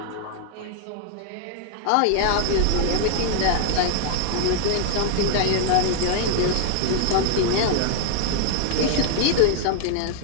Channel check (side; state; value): both; different; correlation 0.00